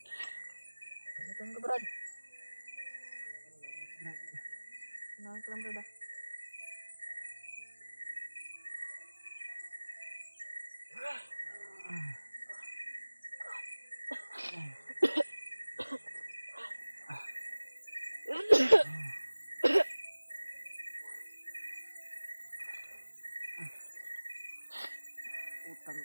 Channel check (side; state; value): both; inverted; correlation -1.00